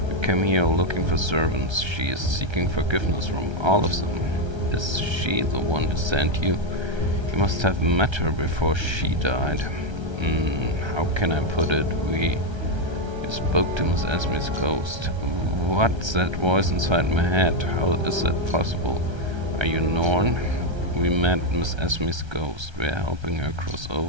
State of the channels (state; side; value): late; left; 1.3 ms